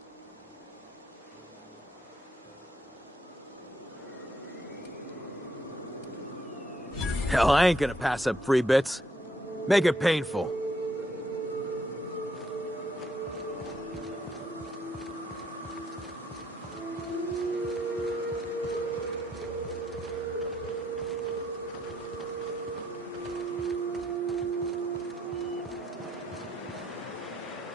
Hell, I ain't gonna pass up free bits. Make it painful.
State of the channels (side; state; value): both; normal; correlation 0.73